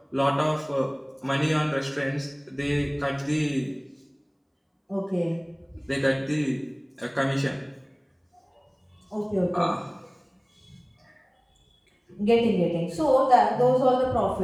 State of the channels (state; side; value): identical; both; correlation 1.00